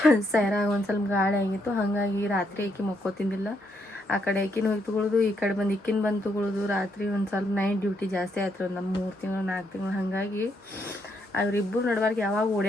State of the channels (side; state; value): both; normal; correlation 0.76